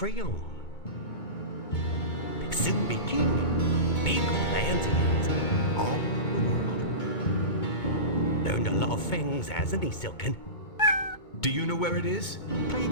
Soon be king. Big plans he has, all the world. Learned a lot of things, hasn't he, Silken? Do you know where it is? Play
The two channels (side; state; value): right; late; 2.2 ms